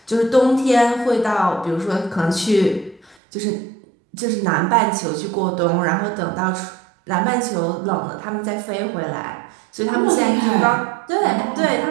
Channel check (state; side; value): drops out; left; at 3.2 s